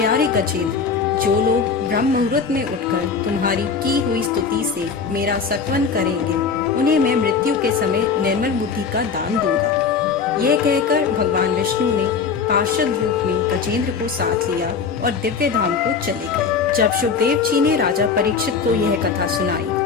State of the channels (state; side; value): quieter; right; 5.6 dB